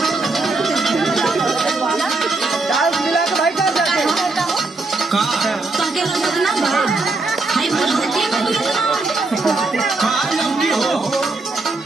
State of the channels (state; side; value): quieter; left; 3.4 dB